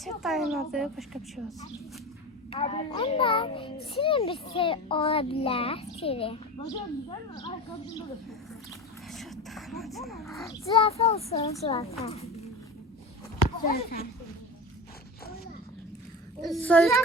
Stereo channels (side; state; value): both; normal; correlation 0.27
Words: dayının adı başqa bir şey olsun. Ama şirin bir şey olabilir. Şirin. Zürafa olsun zürafa. Zürafa. Soyuş